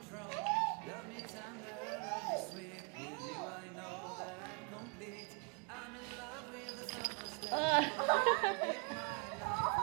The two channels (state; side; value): quieter; left; 32.2 dB